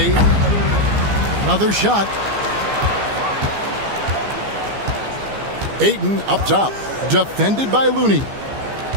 Another shot. Ayton up top. Defended by Looney.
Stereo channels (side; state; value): left; late; 15 ms